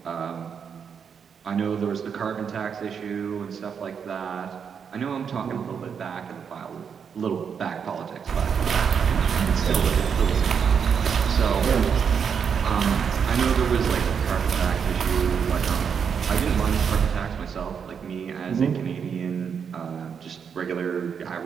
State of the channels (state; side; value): quieter; left; 6.9 dB